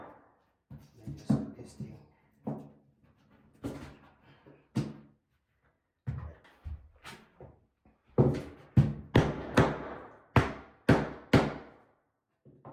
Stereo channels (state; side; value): identical; both; correlation 1.00